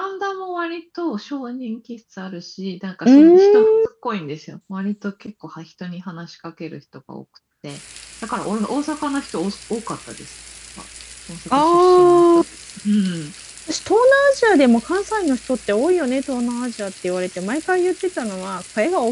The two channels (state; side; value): identical; both; correlation 1.00